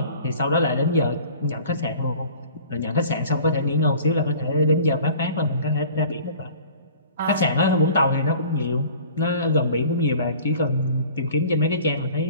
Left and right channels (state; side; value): inverted; both; correlation -0.46